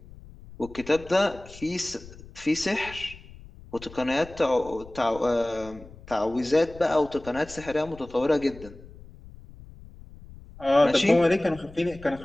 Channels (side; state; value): left; noise; rumble, 19 dB below the sound